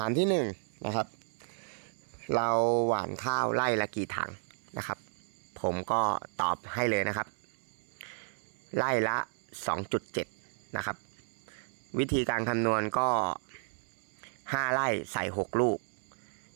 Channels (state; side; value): silent; left; 56 dB below the other